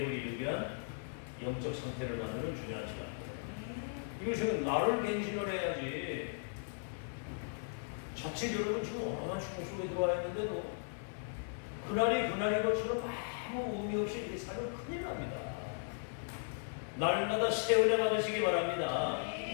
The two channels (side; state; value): right; silent; digital silence